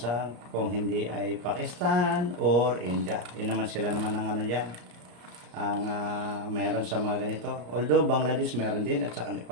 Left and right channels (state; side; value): late; left; 34 ms